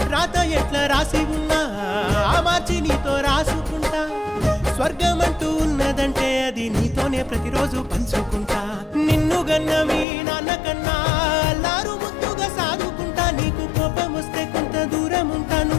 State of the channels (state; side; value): drops out; right; at 10.1 s